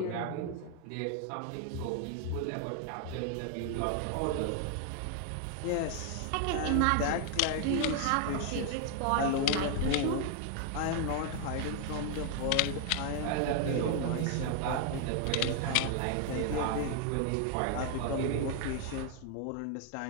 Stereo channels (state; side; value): different; both; correlation 0.00